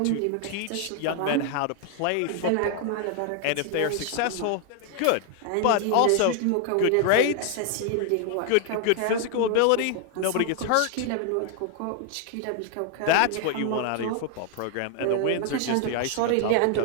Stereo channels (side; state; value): both; different; correlation 0.00